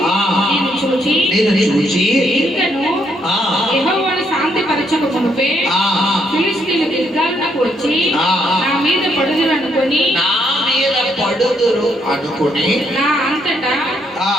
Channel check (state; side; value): normal; both; correlation 0.73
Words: నేను చూచి ఇంకను యెహోవాను శాంతిపరచక మునుపే ఫిలిష్తీయులు గిల్గాలునకు వచ్చి నా మీద పడుదురు అనుకొని నా అంతటా